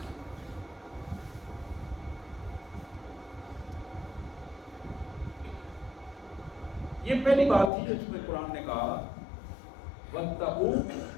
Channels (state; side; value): drops out; right; at 7.7 s